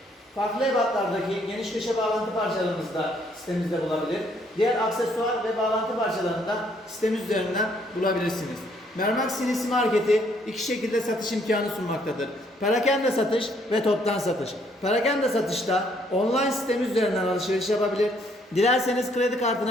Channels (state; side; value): normal; both; correlation 0.67